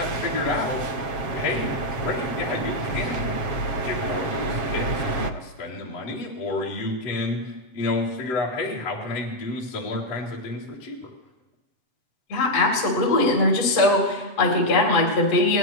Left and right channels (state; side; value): late; right; 7.5 ms